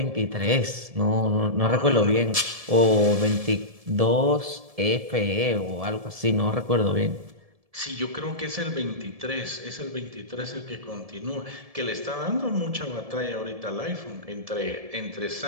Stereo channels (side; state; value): left; late; 1.7 ms